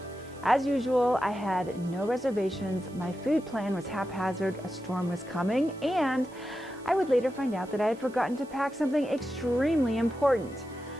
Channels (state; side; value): noise; right; hiss, 26 dB below the sound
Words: As usual, I had no reservations, my food plan was haphazard, a storm was coming, and I would later find out that I had forgotten to pack something extremely important.